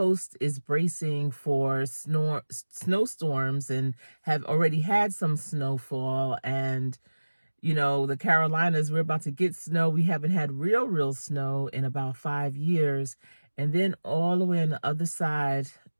is bracing for snowstorms and have already had some snowfall. And, the Carolinas, we're about to get snow. We haven't had real snow in about 5 years. And then all the way on the other side,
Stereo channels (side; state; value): both; inverted; correlation -1.00